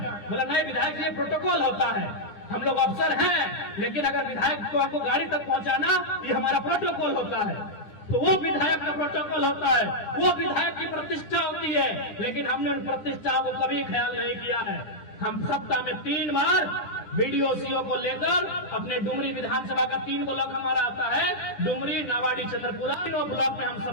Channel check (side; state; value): right; late; 10 ms